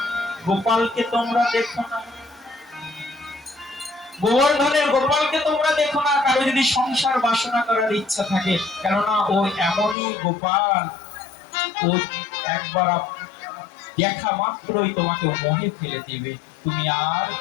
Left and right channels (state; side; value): drops out; right; at 10.0 s